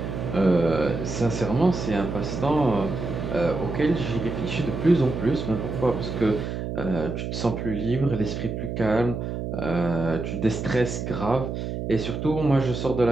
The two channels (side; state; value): right; noise; hum, 4 dB below the sound